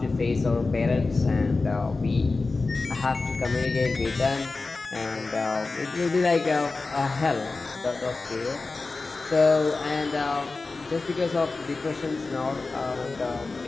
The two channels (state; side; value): quieter; right; 3.7 dB